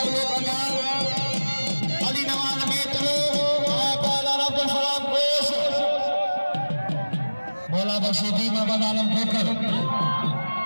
बना अली नवाज मेतलो पहलवान अब्दुल सलाम घोष बोला बसीती मदन आलम खोकर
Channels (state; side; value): inverted; both; correlation -1.00